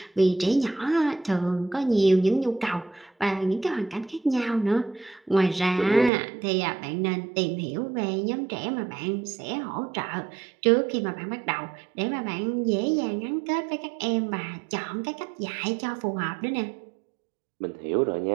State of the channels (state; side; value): drops out; left; at 6.1 s